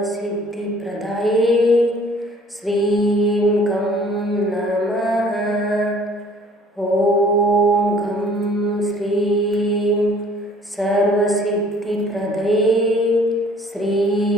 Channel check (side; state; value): both; normal; correlation 0.55